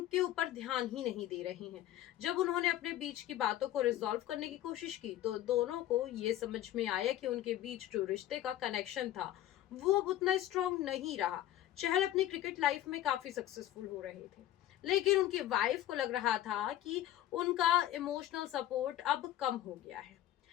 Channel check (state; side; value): quieter; right; 13.1 dB